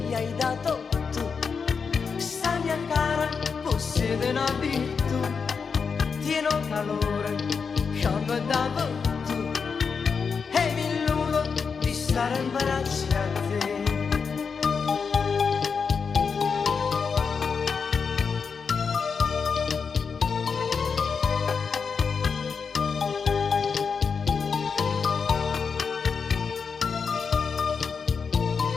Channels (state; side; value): quieter; right; 5.7 dB